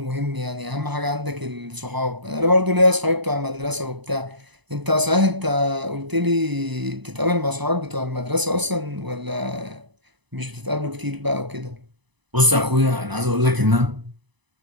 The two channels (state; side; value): late; left; 1.0 ms